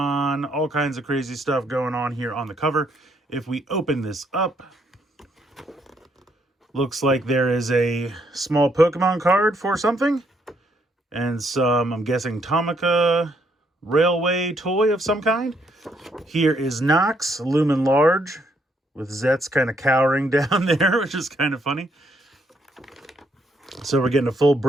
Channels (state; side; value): normal; both; correlation 0.73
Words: all kinds of crazy stuff going on here on the cover. If we open this up, looks like there is a small Pokemon card for something. And some, I'm guessing, Tamaka Railway toy of some kind. Here is Nox, Lumen Large, with Zeztz kind of cowering down there, which is kind of funny. So we're getting a full